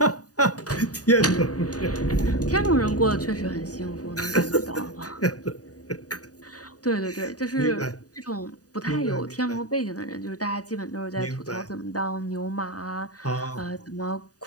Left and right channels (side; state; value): right; late; 0.68 ms